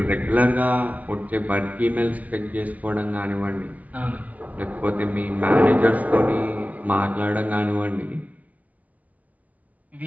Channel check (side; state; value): left; late; 0.070 ms